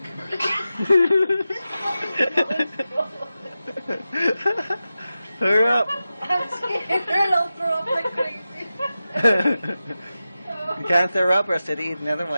Hurry up. I'm scared. I'll throw up like crazy. You can't throw up or else I'd eat another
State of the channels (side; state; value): both; inverted; correlation -0.93